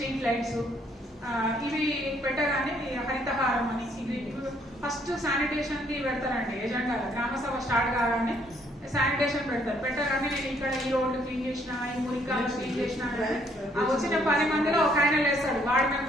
లైట్స్, ఇవి పెట్టగానే హరితహారం అని ఇది ఫస్ట్ శానిటేషన్ కి పెడతారండి ఎజెండా. గ్రామ సభ స్టార్ట్ కాగానే శానిటేషన్ పెట్టగానే నేను ఇక్కడ ఈ రోడ్డు క్లీన్ చేసిన, ఈ మురికాలు క్లీన్ చేసిన, వచ్చిన 10 మందిలో ఒక ఆయన లేస్తాడు, వార్డు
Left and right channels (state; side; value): normal; both; correlation 0.67